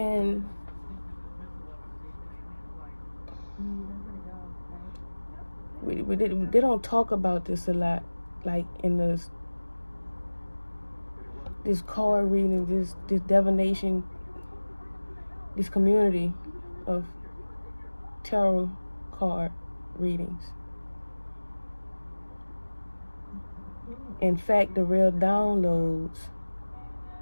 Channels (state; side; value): inverted; both; correlation -1.00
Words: they don't talk about this a lot, like in this card reading, this divination, this community of tarot card readings. In fact, the real downloads